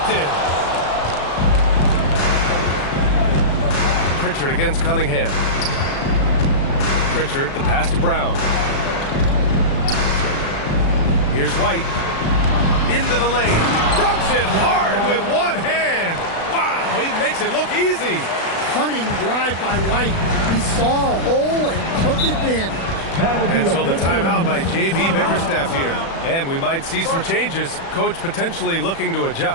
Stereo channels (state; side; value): late; right; 36 ms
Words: Pritchard against Cunningham. Pritchard, the pass to Brown. Here's White. Into the lane. Dunks it hard with one hand. Wow, he makes it look easy. Cunning drive by White. He saw a hole and took advantage. And so the timeout by J.B. Bickerstaff here. And we might see some changes. Coach potentially looking to